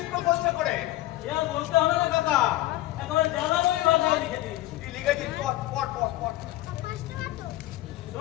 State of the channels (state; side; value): quieter; right; 16.4 dB